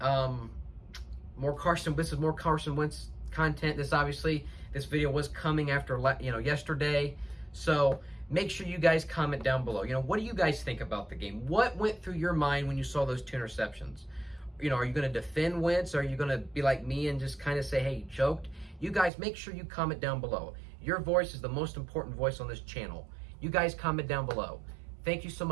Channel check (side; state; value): left; drops out; at 19.1 s